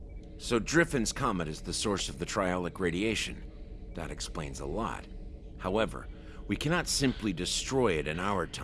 So Driffen's comet is the source of the triolic radiation. That explains a lot. However, we cannot simply destroy it in our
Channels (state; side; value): identical; both; correlation 1.00